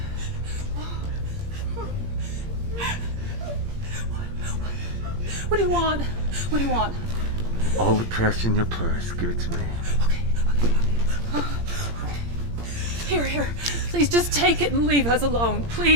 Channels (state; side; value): late; left; 17 ms